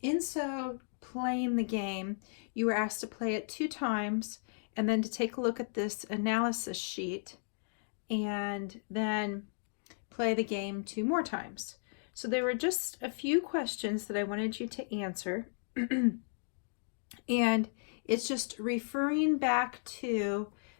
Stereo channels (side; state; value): right; silent; digital silence